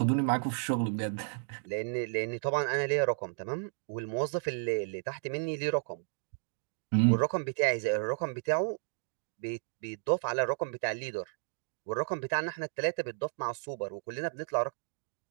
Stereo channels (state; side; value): silent; left; digital silence